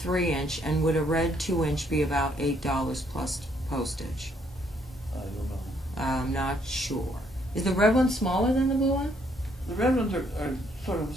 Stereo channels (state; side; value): normal; both; correlation 0.69